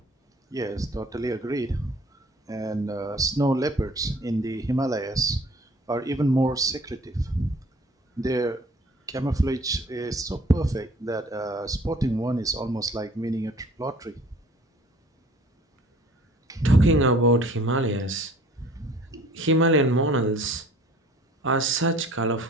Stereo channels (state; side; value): normal; both; correlation 0.52